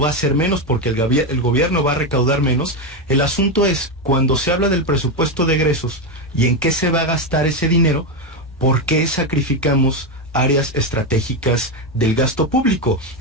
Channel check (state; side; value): normal; both; correlation 0.10